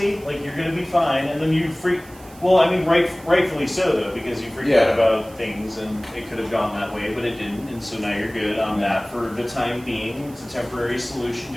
Like, you're going to be fine. And then you freak. Well, I mean, rightfully so, though, because you freaked out about things and it could have gone that way, but it didn't. And so now you're good on that for the time being. It's a temporary solution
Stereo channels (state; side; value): noise; right; hiss, 23 dB below the sound